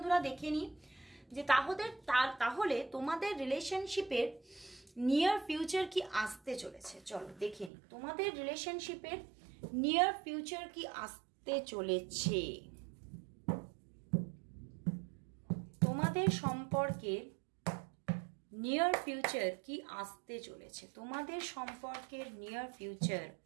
দেখে নিই যে তাহলে তোমাদের রিলেশনশিপের নিয়ার ফিউচার কি আসতে চলেছে। চলো দেখে নিই তোমাদের রিলেশনশিপের নিয়ার ফিউচার কি আসতে চলেছে। তোমাদের সম্পর্কের নিয়ার ফিউচার কি আসতে চলেছে, তোমাদের সম্পর্কের নিয়ার ফিউচার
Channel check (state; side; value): drops out; left; at 7.7 s